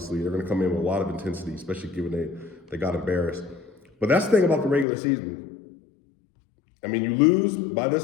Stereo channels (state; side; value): drops out; right; at 4.9 s